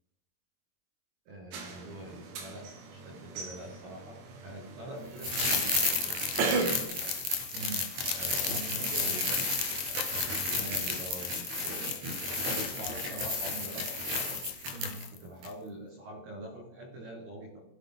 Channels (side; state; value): left; late; 22 ms